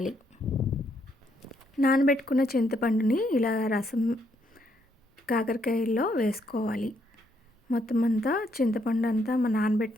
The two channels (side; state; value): both; normal; correlation 0.74